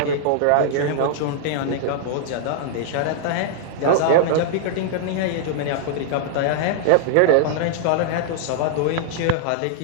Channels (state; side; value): different; both; correlation -0.01